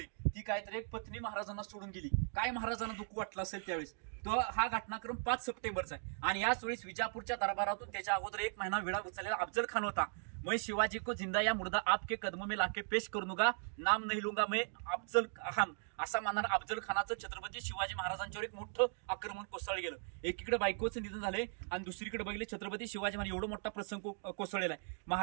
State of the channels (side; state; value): left; silent; 52 dB below the other